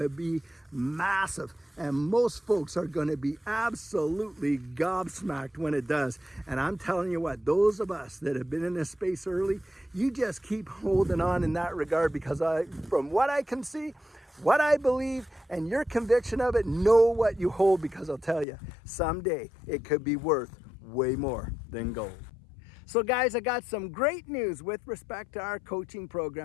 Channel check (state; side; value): drops out; right; at 18.4 s